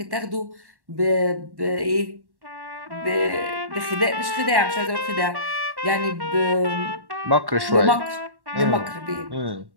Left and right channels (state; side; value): late; left; 1.1 ms